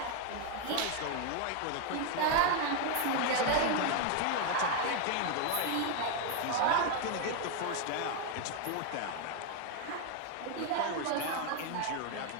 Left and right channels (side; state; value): both; different; correlation 0.01